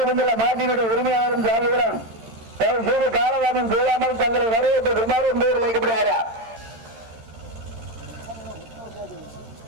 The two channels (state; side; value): late; left; 13 ms